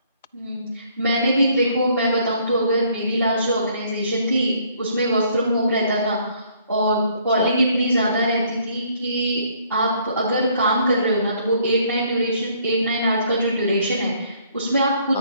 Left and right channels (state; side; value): inverted; both; correlation -0.64